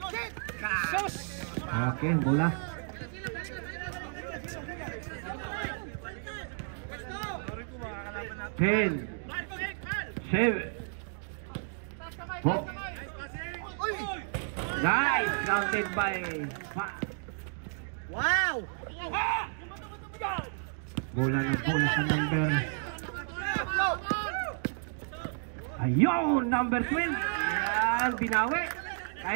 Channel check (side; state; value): left; silent; 56 dB below the other